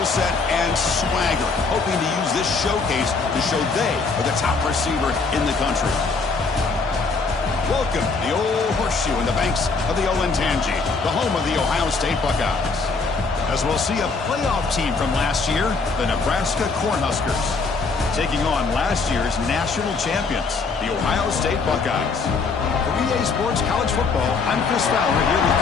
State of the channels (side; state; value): right; quieter; 4.4 dB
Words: set and swagger, hoping to use this showcase to show they are the top receiver in the country. Welcome to the Old Horseshoe in the banks of the Olentangy, the home of the Ohio State Buckeyes. As we'll see a playoff team from last year, the Nebraska Cornhuskers, taking on last year's national champions, the Ohio State Buckeyes. For EA Sports College Football, I'm Chris Fowler here with